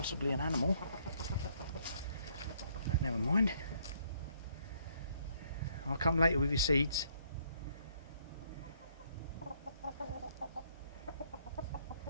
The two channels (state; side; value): inverted; both; correlation -0.68